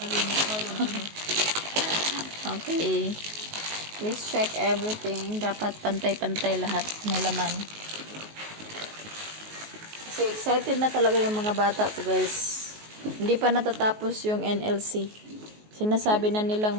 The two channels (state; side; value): late; left; 19 ms